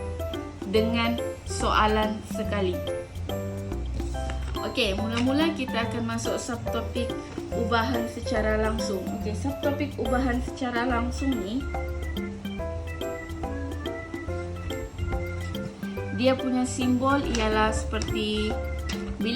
dengan soalan sekali. Okey, mula-mula kita akan masuk subtopik ubahan secara langsung. Okey, subtopik ubahan secara langsung ni dia punya simbol ialah seperti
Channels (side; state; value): both; identical; correlation 1.00